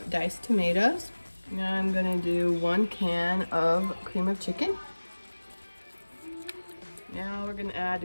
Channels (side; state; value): both; inverted; correlation -1.00